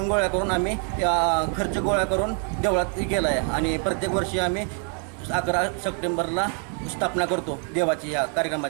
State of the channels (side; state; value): left; quieter; 36.4 dB